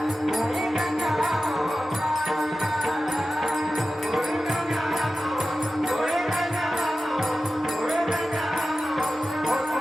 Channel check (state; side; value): normal; both; correlation 0.94